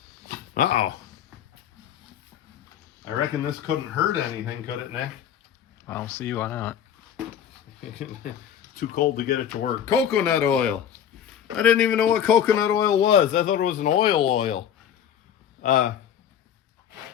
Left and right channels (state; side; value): quieter; right; 9.2 dB